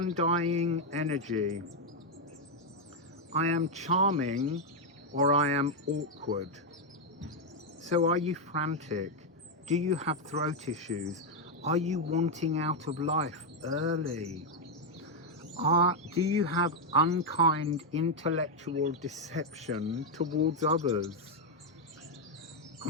energy. I am charming or I am awkward. So are you frantic? Do you have throat issues? Are you wanting out of life early? Do you have unkind intellectual deception towards others?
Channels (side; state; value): both; normal; correlation 0.01